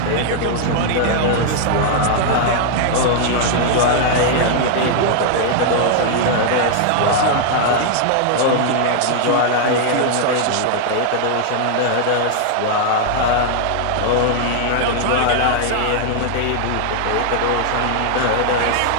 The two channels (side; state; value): both; different; correlation 0.00